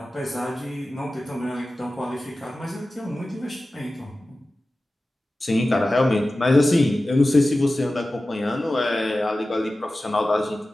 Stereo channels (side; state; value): both; normal; correlation 0.95